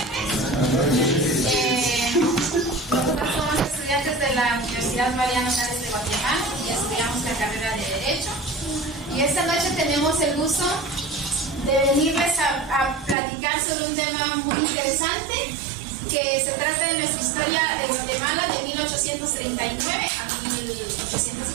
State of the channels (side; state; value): left; drops out; at 13.2 s